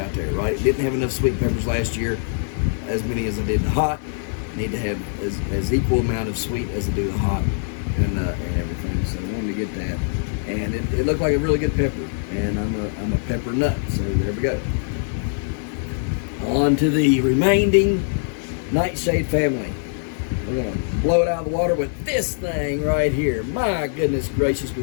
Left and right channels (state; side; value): silent; right; digital silence